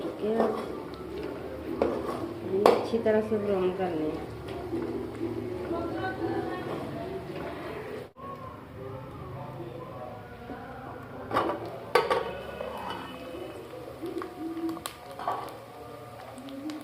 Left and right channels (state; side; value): identical; both; correlation 1.00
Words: चुके हैं। ये अच्छी तरह से ब्राउन करने हैं।